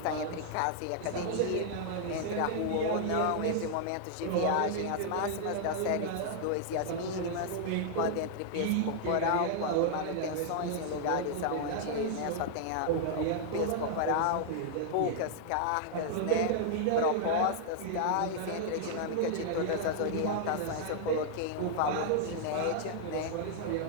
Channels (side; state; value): both; different; correlation -0.01